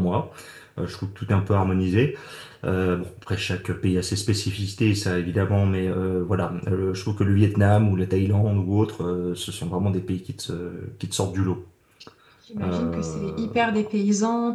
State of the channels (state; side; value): identical; both; correlation 1.00